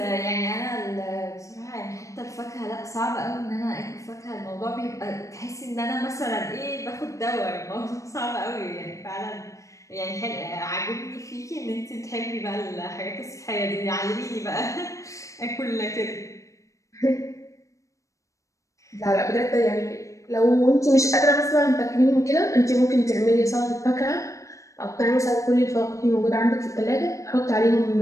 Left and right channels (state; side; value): late; right; 0.15 ms